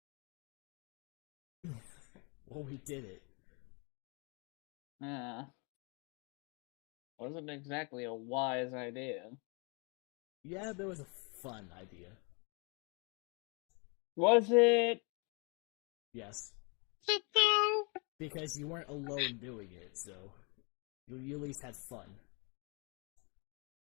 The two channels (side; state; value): right; quieter; 32.8 dB